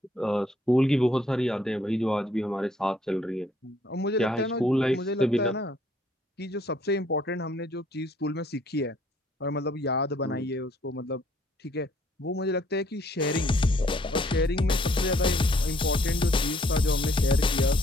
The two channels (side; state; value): both; normal; correlation 0.64